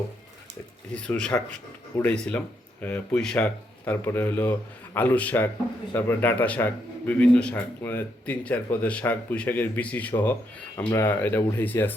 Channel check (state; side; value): normal; both; correlation 0.77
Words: কিছু শাক উড়াইছিলাম, পুঁই শাক, তারপরে হলো আলুর শাক, তারপরে ডাঁটা শাক, বিভিন্ন শাক, মানে 3-4 পদের শাক, পুঁই শাকের বিচি সহ আমরা এটা উঠাইছি